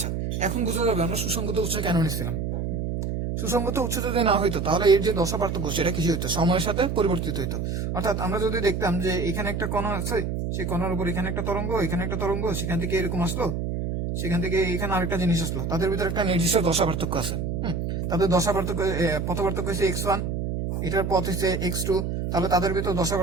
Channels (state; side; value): noise; right; hum, 2 dB below the sound